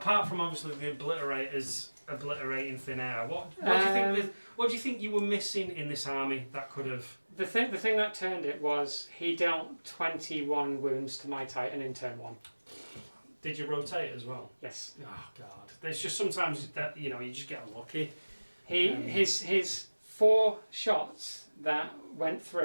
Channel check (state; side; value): inverted; both; correlation -1.00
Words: from obviously the obliterators obliterating thin air, what do you think you were missing in this army that could have... The thing that turned it was he dealt 21 wounds to my Titan in turn 1. Did you rotate as well? Yes. Oh God! There's just sometimes that you just get unlucky. His 4 shots that went